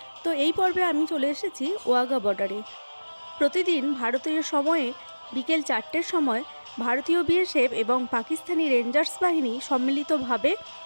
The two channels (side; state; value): both; inverted; correlation -1.00